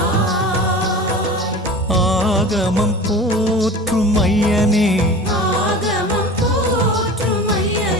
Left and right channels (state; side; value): normal; both; correlation 0.36